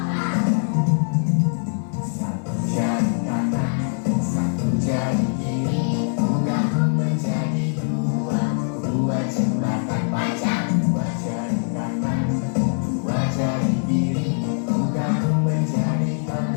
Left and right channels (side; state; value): right; silent; digital silence